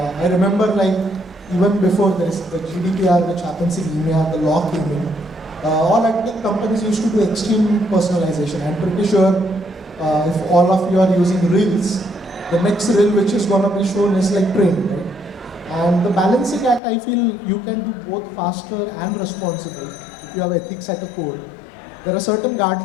I remember like even before this, the GDPR which happens in EMEA, the law came in, all tech companies used to do extreme personalization. I'm pretty sure if all of you are using Reels, the next Reel which is going to be shown is like train, right? And the balancing act, I feel you can do both faster and responsible if you have ethics at the core. There are certain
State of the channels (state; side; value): drops out; right; at 16.8 s